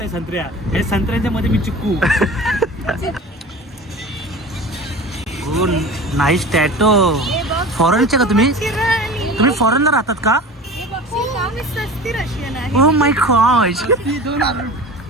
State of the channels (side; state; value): both; normal; correlation 0.36